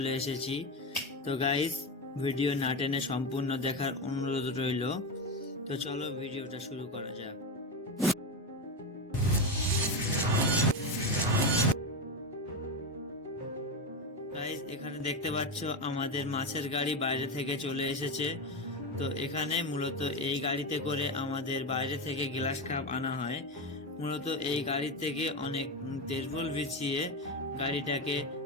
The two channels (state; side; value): normal; both; correlation 0.15